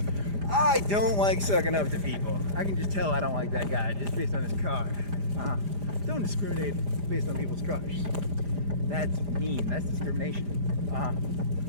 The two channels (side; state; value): left; late; 5.0 ms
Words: I don't like sucking up to people. I can just tell I don't like that guy just based on his car. Don't discriminate based on people's cars. That's mean. That's discrimination.